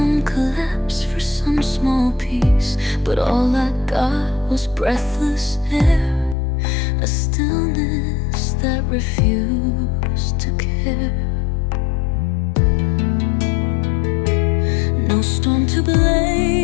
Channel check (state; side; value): drops out; right; at 6.4 s